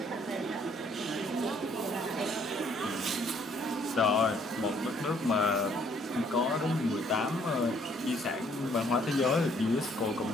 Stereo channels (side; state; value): both; normal; correlation 0.64